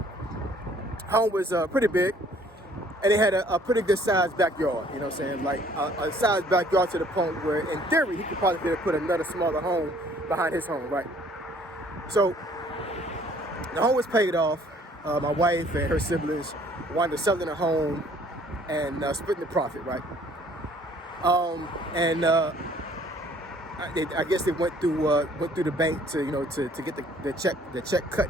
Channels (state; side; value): normal; both; correlation 0.58